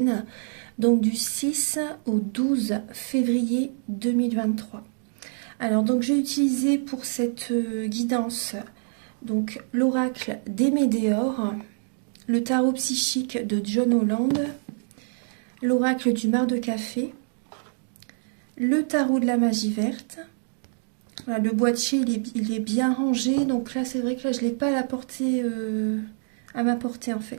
donc du 6 au 12 février 2023. Alors donc j'ai utilisé pour cette guidance donc l'oracle des Médéors, le tarot psychique de John Holland, l'oracle du mar de café, le tarot de la magie verte. Voilà, le boîtier il est bien rangé, donc là c'est vrai que là je ne l'ai pas à ma portée en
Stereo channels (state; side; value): silent; left; digital silence